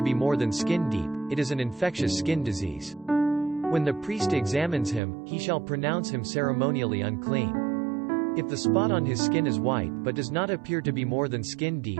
be more than skin deep, it is an infectious skin disease. When the priest examines him, he shall pronounce him ceremonially unclean. If the spot on his skin is white but does not appear to be more than skin deep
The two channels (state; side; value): drops out; left; at 5.0 s